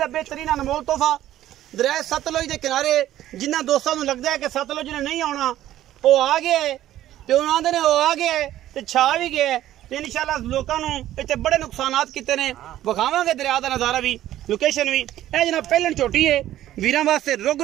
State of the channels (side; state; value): left; quieter; 13.2 dB